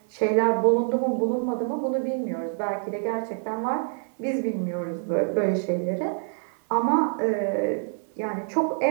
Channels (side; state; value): left; silent; 59 dB below the other